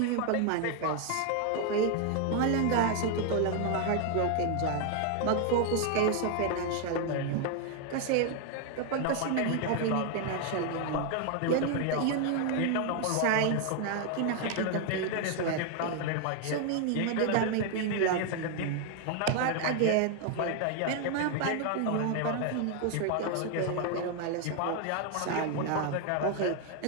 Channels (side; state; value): both; different; correlation 0.00